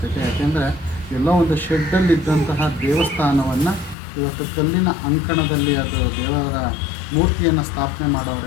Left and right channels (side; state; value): right; drops out; at 4.0 s